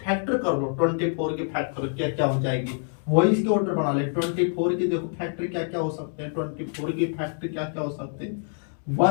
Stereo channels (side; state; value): right; silent; 60 dB below the other